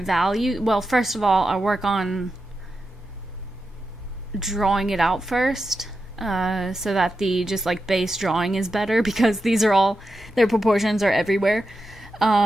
value. Well, first of all, I'll work on drawing it out first, so that the just like base drawing is better, because these are all, their proportions are everywhere.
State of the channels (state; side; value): normal; both; correlation 0.89